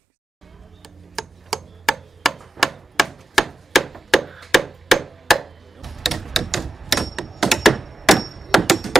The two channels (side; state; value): both; normal; correlation 0.92